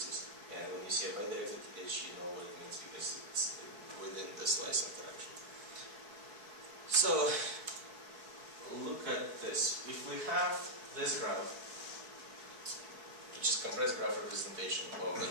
And when you see a bidirected edge, you know what it means because it's within the slice interaction. So look at this. If we have this graph, which is compressed graph representation of a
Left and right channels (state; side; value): late; left; 4.7 ms